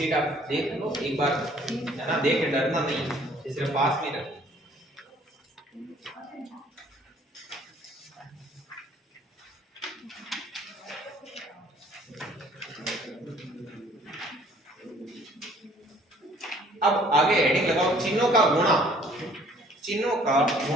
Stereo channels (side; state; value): both; normal; correlation 0.57